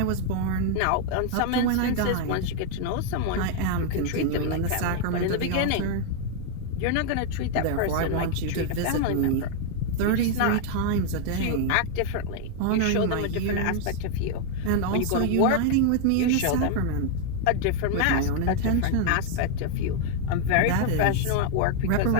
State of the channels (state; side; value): different; both; correlation 0.00